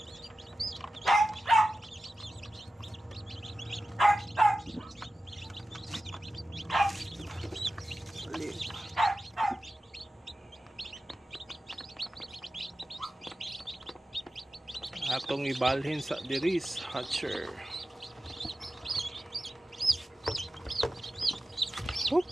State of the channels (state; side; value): normal; both; correlation 0.94